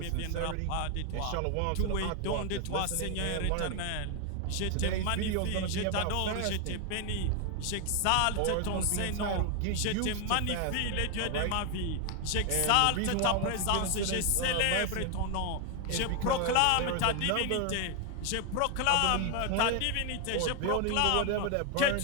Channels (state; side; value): different; both; correlation 0.00